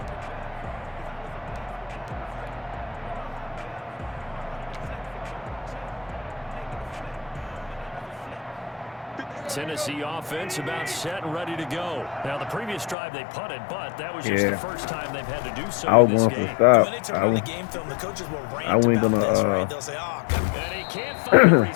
Tennessee offense about set and ready to go. Now, the previous drive they punted, but that was just the first time they've had to do so I was in this going game. to stop. When they turn on the game film, the coaches will rant I wasn't about gonna, this, right? They'll say, oh, God. And he can't find a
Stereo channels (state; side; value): drops out; right; at 13.0 s